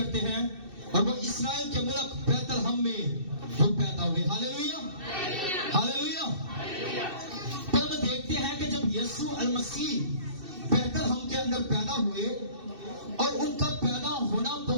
ہیں، اور وہ اسرائیل کے ملک بیت الحم میں وہ پیدا ہوئے۔ Hallelujah hallelujah. پھر ہم دیکھتے ہیں کہ جب یسوع المسیح بیت الحم کے اندر پیدا ہوئے اور ان کا پیدا ہونا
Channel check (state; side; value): late; left; 2.6 ms